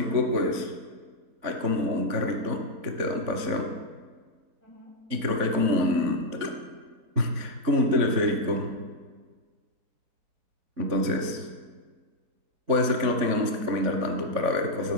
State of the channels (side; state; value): left; late; 3.5 ms